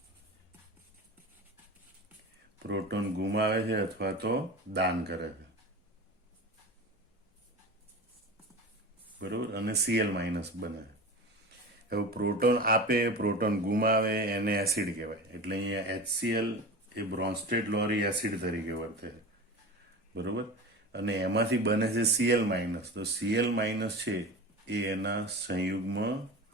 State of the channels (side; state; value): both; normal; correlation 0.30